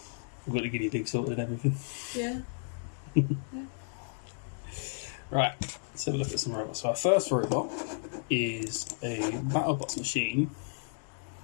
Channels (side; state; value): right; silent; digital silence